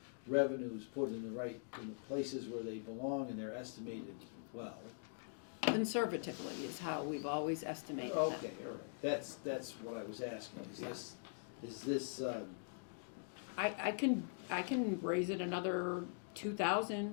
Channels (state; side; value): silent; right; digital silence